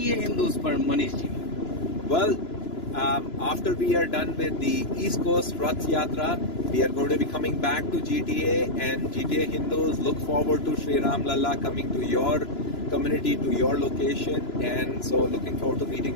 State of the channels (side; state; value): right; late; 2.9 ms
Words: Hindus, Manish ji? Well, after we are done with the East Coast Rath Yatra, we are going to be coming back to GTA, and GTA Hindus look forward to Sri Ram Lalla coming to your community, to your location, and so looking forward to meeting